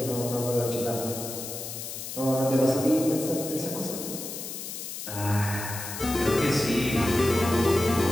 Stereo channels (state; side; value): noise; left; hiss, 8 dB below the sound